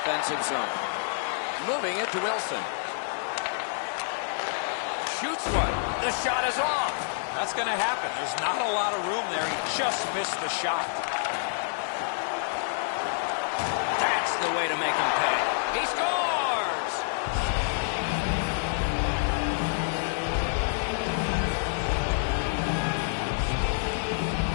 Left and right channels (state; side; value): silent; right; digital silence